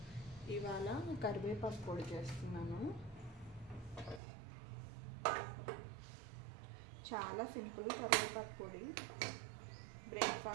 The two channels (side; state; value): left; drops out; at 4.2 s